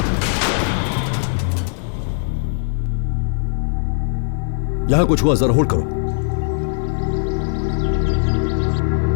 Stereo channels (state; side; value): silent; right; 57 dB below the other